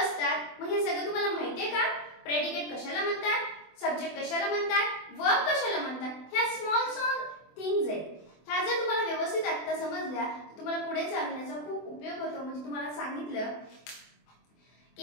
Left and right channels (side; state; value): right; late; 24 ms